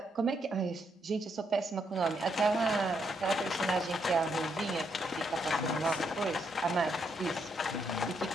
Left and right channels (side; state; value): both; normal; correlation 0.77